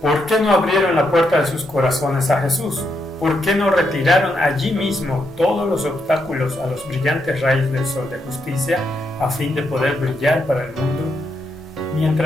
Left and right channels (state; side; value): normal; both; correlation 0.80